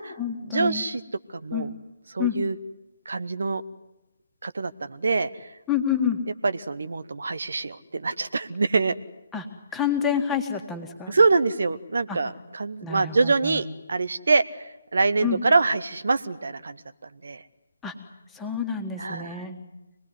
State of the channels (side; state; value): both; inverted; correlation -0.76